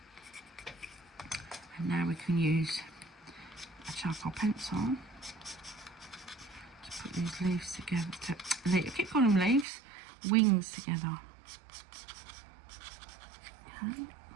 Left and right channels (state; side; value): drops out; left; at 9.7 s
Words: And now we can use a charcoal pencil to put these leaves together. I keep calling them leaves, wings together. Okay.